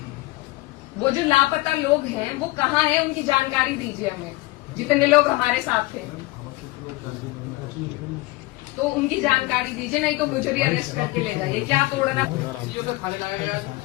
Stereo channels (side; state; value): right; quieter; 20.4 dB